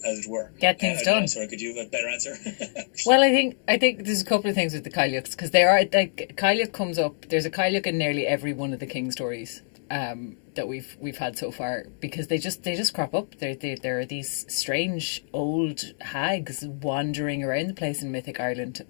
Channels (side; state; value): right; silent; digital silence